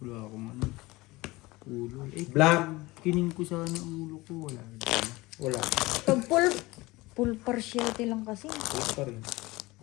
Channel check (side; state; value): right; quieter; 21.1 dB